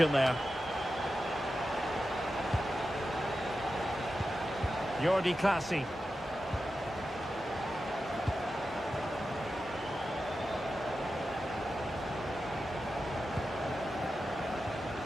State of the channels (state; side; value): normal; both; correlation 0.91